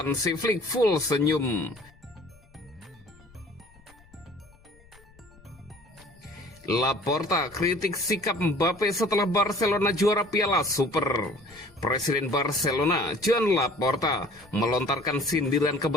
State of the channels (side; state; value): left; noise; rumble, 27 dB below the sound